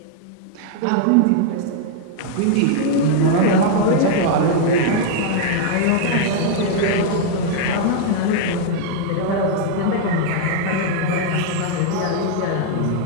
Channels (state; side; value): different; both; correlation 0.00